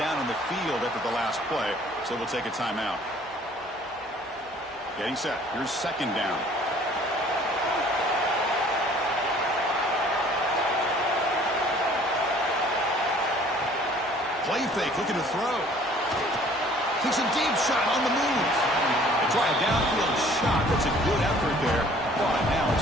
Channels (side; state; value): both; normal; correlation 0.54